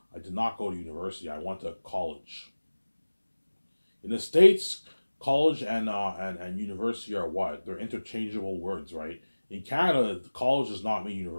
I did not go to university. I went to college. In the States, college and university are what? They're interchangeable words, right? In Canada, college does not mean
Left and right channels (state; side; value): inverted; both; correlation -1.00